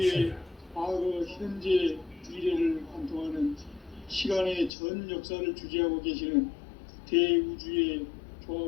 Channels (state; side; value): drops out; right; at 4.7 s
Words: 과거, 현재, 미래를 관통하는 시간의 전 역사를 주재하고 계시는 대우주의